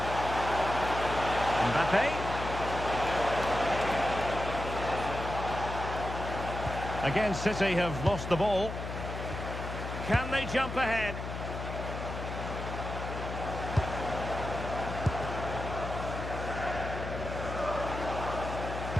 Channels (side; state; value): left; noise; hum, 6 dB below the sound